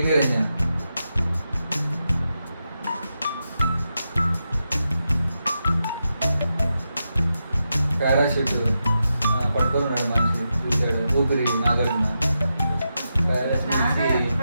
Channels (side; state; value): both; inverted; correlation -0.87